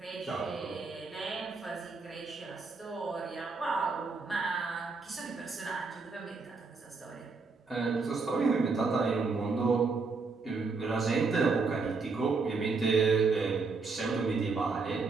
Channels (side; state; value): left; quieter; 4.3 dB